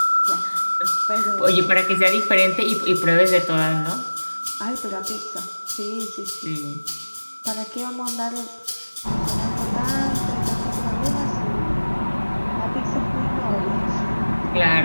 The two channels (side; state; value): both; inverted; correlation -1.00